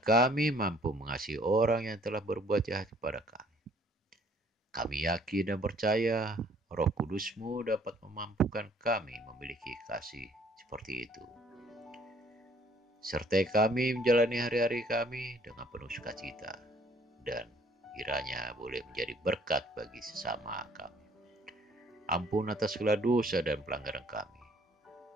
mampu mengasihi orang yang telah berbuat jahat kepada kami. Kami yakin dan percaya Roh Kudus-Mu dapat memampukan kami memiliki kasih seperti itu. Sertai kami menjalani hari-hari kami dengan penuh sukacita, dan kiranya boleh menjadi berkat bagi sesama kami. Ampun atas segala dosa dan pelanggaran kami.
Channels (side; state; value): both; normal; correlation 0.59